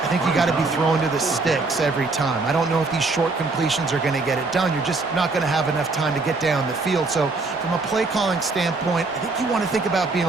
think you got to be throwing to the sticks every time. I don't know if these short completions are going to get it done. You're just not going to have enough time to get down the field. So from a play calling standpoint, I think you want to think about being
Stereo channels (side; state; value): left; quieter; 3.6 dB